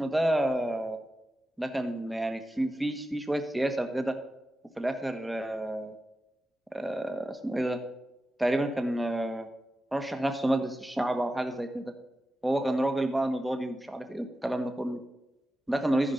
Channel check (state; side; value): normal; both; correlation 0.92